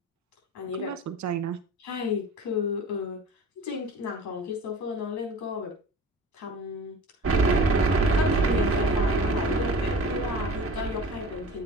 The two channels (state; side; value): normal; both; correlation 0.39